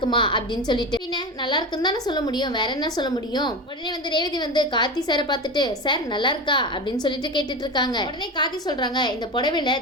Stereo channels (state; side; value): normal; both; correlation 0.24